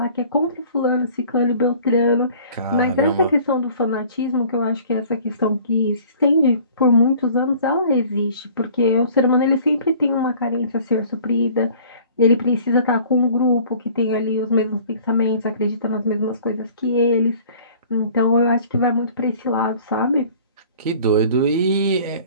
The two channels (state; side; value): inverted; both; correlation -0.50